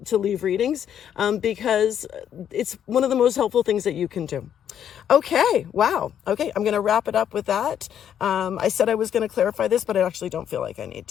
to leave readings, because it's one of the most helpful things that you can do. Okay. Wow. Okay. I'm going to wrap it up with that. I said I was going to clarify this, but I actually don't feel like I need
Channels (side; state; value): right; quieter; 9.4 dB